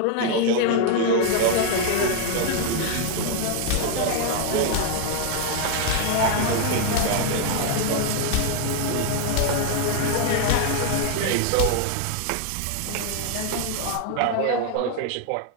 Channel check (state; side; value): different; both; correlation 0.00